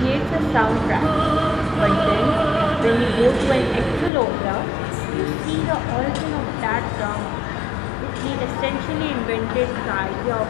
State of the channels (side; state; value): right; drops out; at 4.1 s